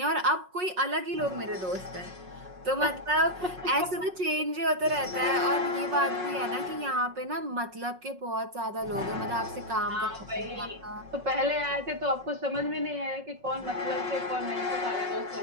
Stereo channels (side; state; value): left; late; 5.5 ms